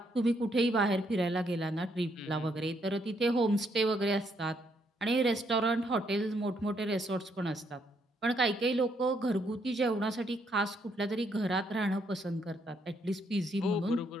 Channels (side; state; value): both; normal; correlation 0.73